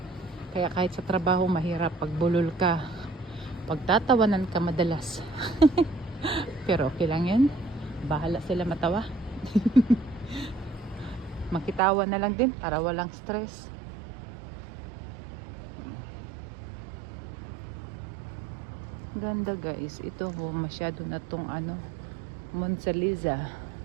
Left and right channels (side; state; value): left; drops out; at 11.8 s